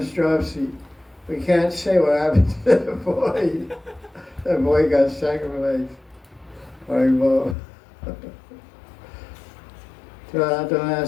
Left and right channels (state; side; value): drops out; right; at 7.6 s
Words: dropsy. We can't say what happened to that boy. That boy got sacrificed. Well, so don't